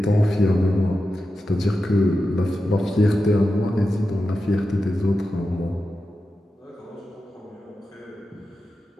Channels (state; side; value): normal; both; correlation 0.91